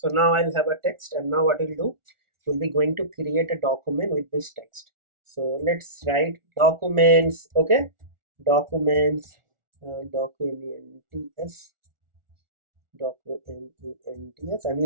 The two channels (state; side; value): late; left; 1.4 ms